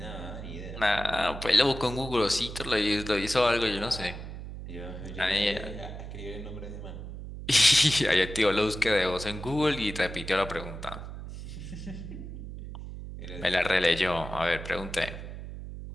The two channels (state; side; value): noise; right; hum, 10 dB below the sound